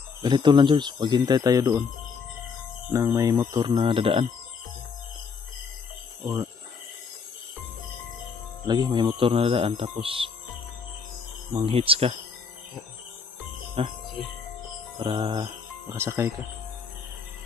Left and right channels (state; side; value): quieter; right; 5.5 dB